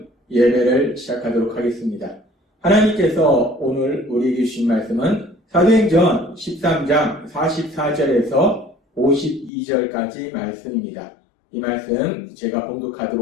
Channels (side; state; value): right; drops out; at 9.5 s